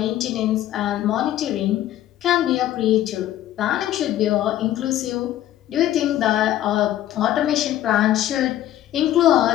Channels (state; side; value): quieter; right; 13.0 dB